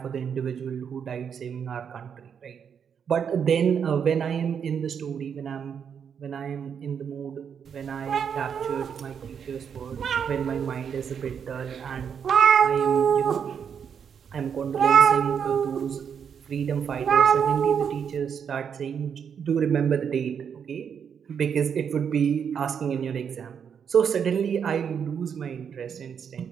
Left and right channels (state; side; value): quieter; left; 7.4 dB